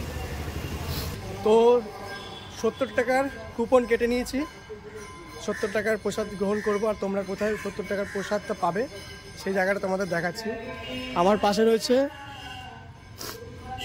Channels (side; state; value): both; identical; correlation 1.00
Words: তো 70 টাকার কুপন কেটে নিয়েছি, 70 টাকার প্রসাদ গ্রহণ করব। আর তোমরা কোথায় 70 টাকার প্রসাদটা পাবে সেই জায়গাটা তোমাদের দেখাচ্ছি। আমার পাশে রয়েছে,